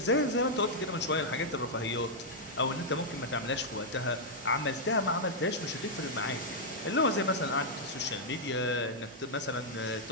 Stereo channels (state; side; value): normal; both; correlation -0.05